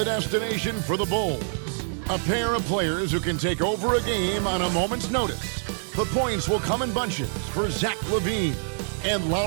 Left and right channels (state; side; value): silent; left; digital silence